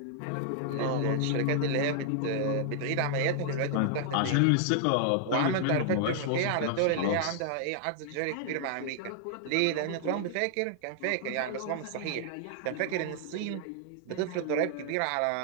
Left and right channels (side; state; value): both; different; correlation -0.01